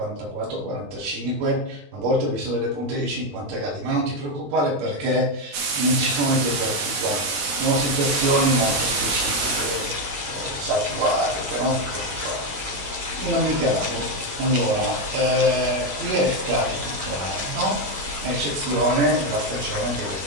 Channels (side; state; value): left; late; 21 ms